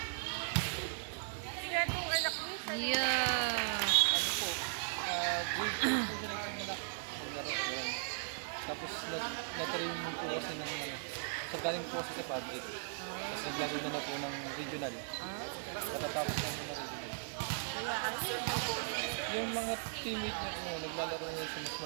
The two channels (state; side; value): silent; left; digital silence